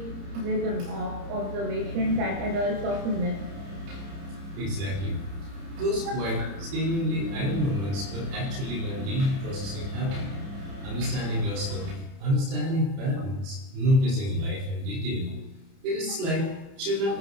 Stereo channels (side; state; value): left; late; 30 ms